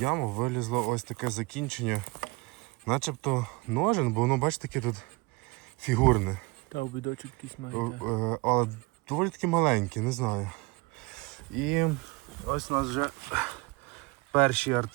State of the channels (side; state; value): left; quieter; 24.9 dB